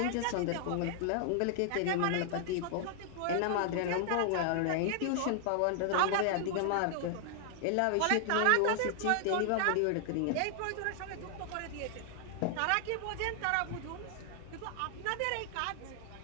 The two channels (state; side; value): different; both; correlation 0.00